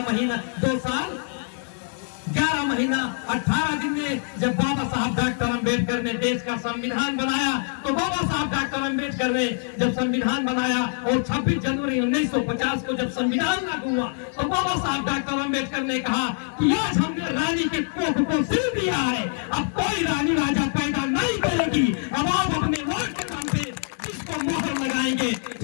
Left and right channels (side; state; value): right; silent; 58 dB below the other